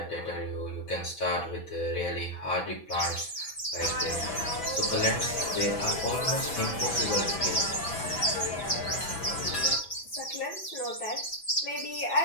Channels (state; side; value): late; right; 6.0 ms